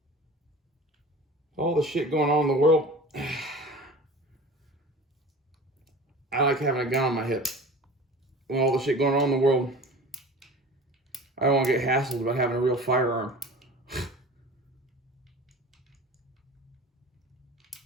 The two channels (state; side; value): normal; both; correlation 0.38